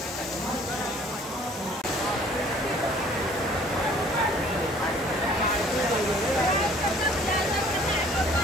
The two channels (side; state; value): both; normal; correlation 0.55